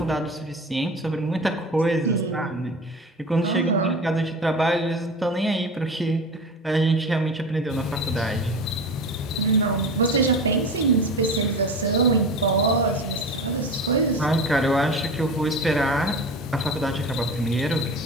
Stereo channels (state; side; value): normal; both; correlation 0.30